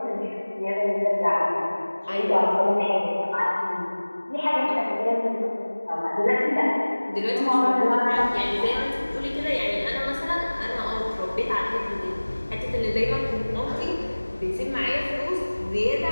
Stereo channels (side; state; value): both; inverted; correlation -1.00